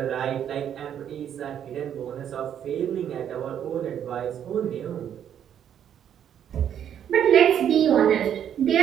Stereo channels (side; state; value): left; quieter; 9.4 dB